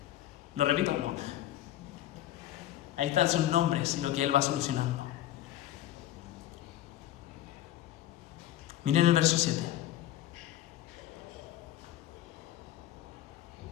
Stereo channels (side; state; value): right; quieter; 13.4 dB